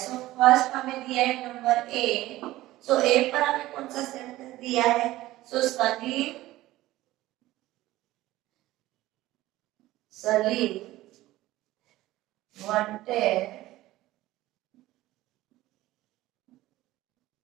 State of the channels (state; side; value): quieter; left; 16.6 dB